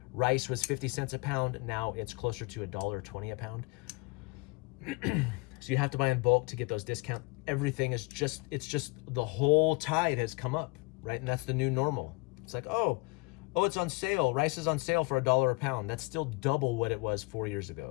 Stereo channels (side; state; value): right; quieter; 27.3 dB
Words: Rice was 50 cents a pound. Now it's closer to $1.20 a pound. So you have to buy in bulk to get those discounts. Everything is it's just the whole tide has come up, right? And that's the new normal. It's like, oh, it's on sale. Rice is on sale for $1 a pound. That's still double what it was 4 years